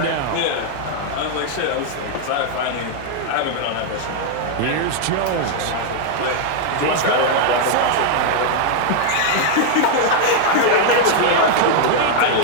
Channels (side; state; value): both; different; correlation 0.00